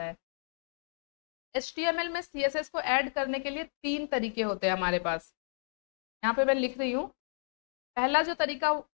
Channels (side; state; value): right; silent; digital silence